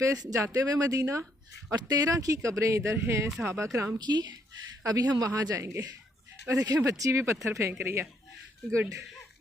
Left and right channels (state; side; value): normal; both; correlation 0.71